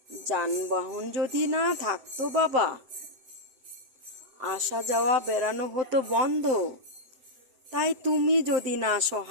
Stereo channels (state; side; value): late; left; 7.8 ms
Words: যানবাহন যদি না থাকতো বাবা, আসা যাওয়া বেড়ানো হতো বন্ধ। তাই তুমি যদি না